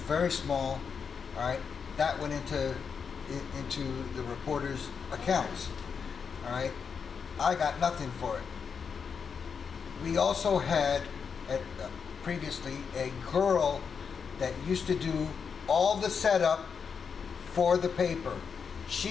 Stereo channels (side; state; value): right; quieter; 6.2 dB